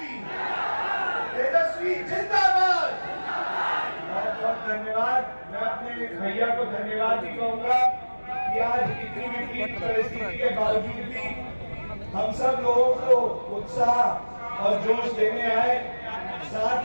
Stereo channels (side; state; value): both; inverted; correlation -1.00